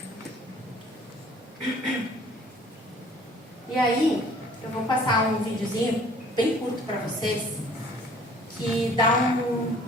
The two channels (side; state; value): both; normal; correlation 0.54